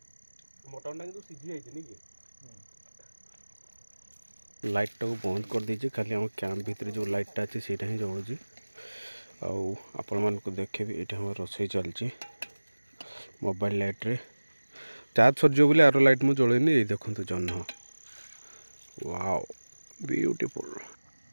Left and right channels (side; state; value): both; inverted; correlation -1.00